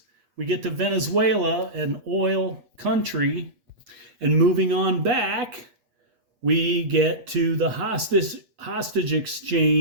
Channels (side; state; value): left; late; 8.2 ms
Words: We get to Venezuela, an oil country, and moving on back, we get to the hostage